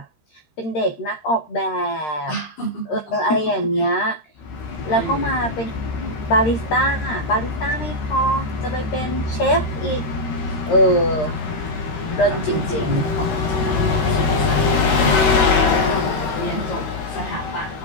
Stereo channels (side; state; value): right; late; 13 ms